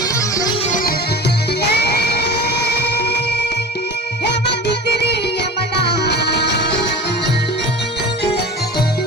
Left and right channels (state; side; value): normal; both; correlation 0.35